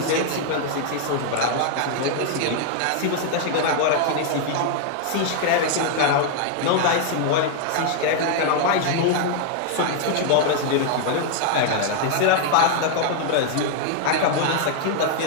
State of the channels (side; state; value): both; different; correlation 0.00